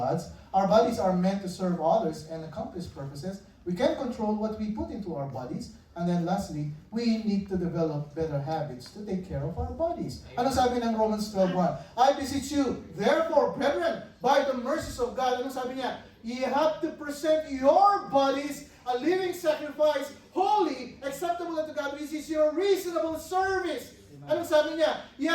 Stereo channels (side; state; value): both; identical; correlation 1.00